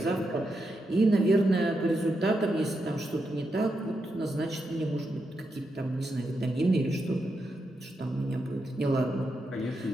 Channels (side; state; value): both; normal; correlation 0.84